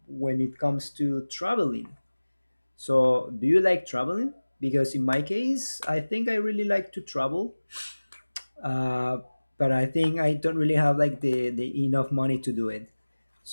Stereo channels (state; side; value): inverted; both; correlation -1.00